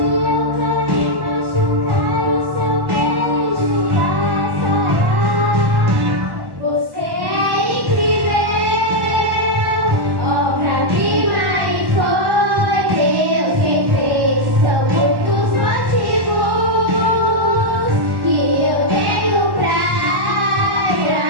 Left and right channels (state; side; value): late; left; 1.1 ms